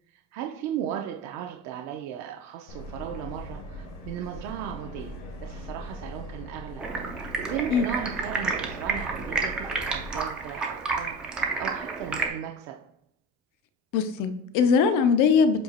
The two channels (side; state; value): both; normal; correlation 0.31